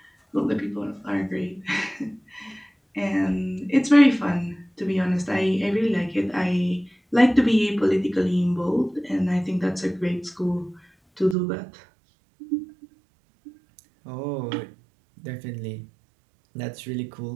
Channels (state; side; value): drops out; left; at 11.4 s